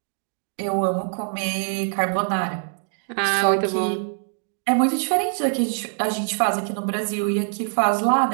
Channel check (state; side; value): silent; left; digital silence